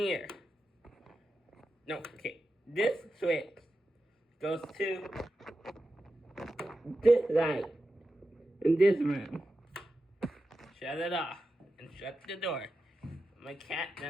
No, okay. This switch goes to this light in this room. Shut it off and shut the door. My cat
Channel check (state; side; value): normal; both; correlation 0.91